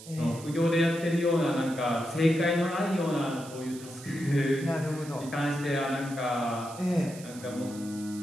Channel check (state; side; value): noise; right; hiss, 17 dB below the sound